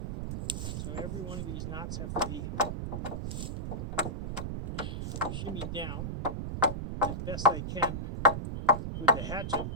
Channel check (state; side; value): noise; right; rumble, 4 dB below the sound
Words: So every one of these knots have to be shimmied down as best I can with the hatchet